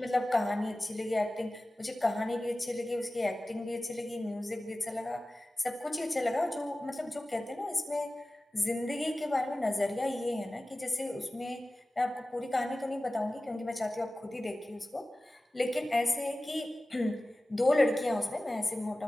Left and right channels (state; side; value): normal; both; correlation 0.96